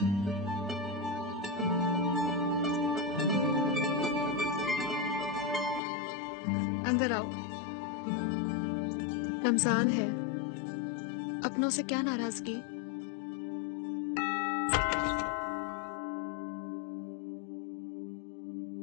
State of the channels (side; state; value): right; drops out; at 5.8 s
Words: अंदर आओ। रमजान है, अपनों से क्या नाराजगी?